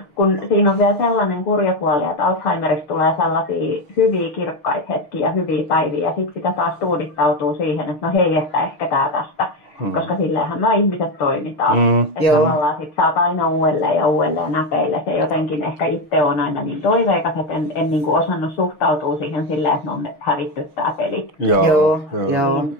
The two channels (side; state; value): right; late; 6.5 ms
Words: Kun siinä on vielä sellainen kurja puoli, että Alzheimerista tulee sellaisia hyviä kirkkaita hetkiä, hyviä päiviä, ja sitten sitä taas tuudittautuu siihen, että no hei, että ehkä tää tästä. Koska silleenhän me ihmiset toimitaan. Että tavallaan sit saat aina uudelleen ja uudelleen näpeille. Se jotenkin ehkä itse on aina niin toiveikas, että en niin kuin osannut suhtautua siihen silleen, että me on hävitty tää peli. Joo.